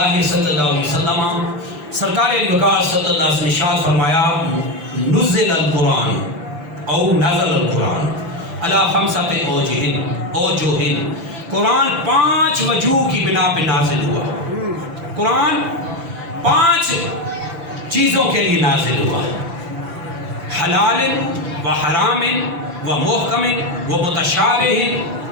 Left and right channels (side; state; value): left; late; 5.9 ms